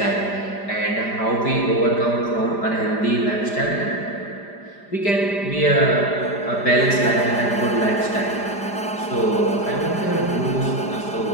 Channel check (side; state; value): right; late; 5.0 ms